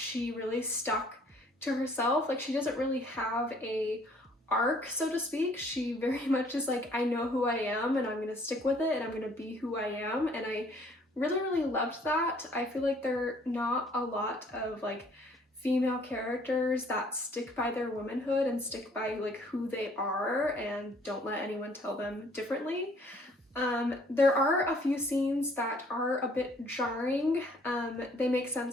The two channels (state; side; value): normal; both; correlation 0.60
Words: really stuck to herself. Like, she doesn't really have a arc, so to speak. She very much is like, I know who I am and I'm gonna stick with it and I'm gonna be who I am. And I really, really loved that. I feel like there are not a lot of like female characters that stick by their womanhood and stick by like who they are and don't let anyone tell them differently. There are a few scenes that are a bit jarring. They make